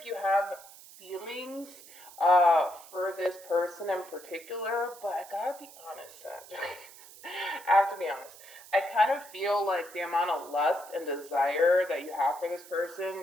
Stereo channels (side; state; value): right; noise; hiss, 19 dB below the sound